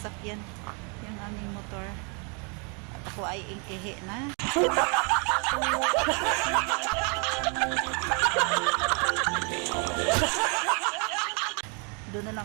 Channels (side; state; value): left; quieter; 35.2 dB